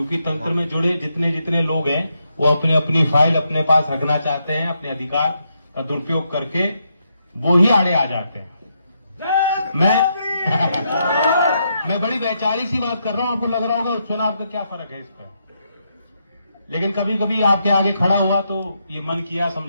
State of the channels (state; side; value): inverted; both; correlation -0.80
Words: तंत्र में जुड़े जितने जितने लोग हैं वो अपनी अपनी फाइल अपने पास रखना चाहते हैं, अपने अधिकार का दुरुपयोग करके वो ही आड़े आ जाते हैं। मैं बड़ी वैचारिक सी बात कर रहा हूं, आपको लग रहा होगा चुनाव का क्या फर्क है इस पर, लेकिन कभी कभी आपके आगे खड़ा हुआ तो ये मन किया